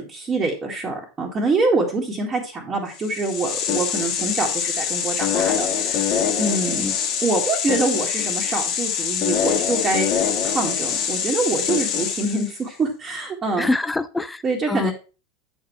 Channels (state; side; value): normal; both; correlation 0.44